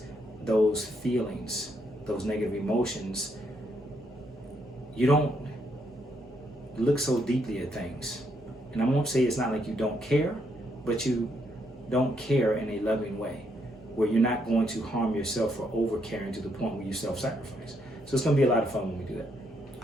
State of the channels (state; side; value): normal; both; correlation 0.75